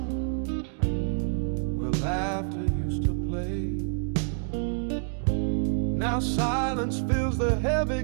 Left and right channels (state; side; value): silent; left; digital silence